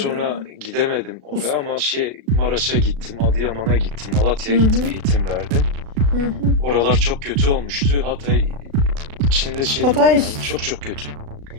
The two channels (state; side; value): late; left; 36 ms